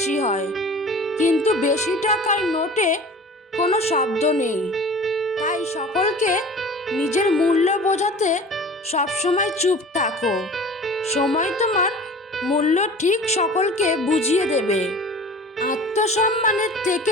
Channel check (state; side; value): normal; both; correlation 0.41